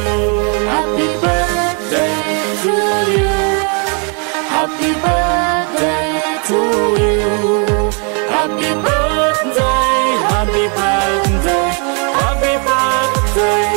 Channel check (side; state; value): left; quieter; 38.4 dB